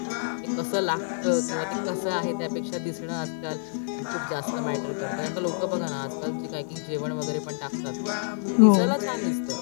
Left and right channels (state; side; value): silent; right; 57 dB below the other